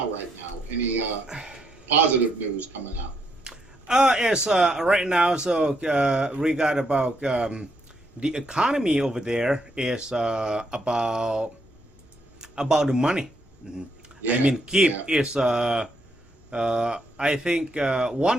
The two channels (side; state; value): both; normal; correlation 0.75